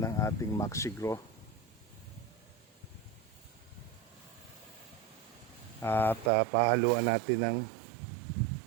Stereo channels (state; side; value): drops out; left; at 6.3 s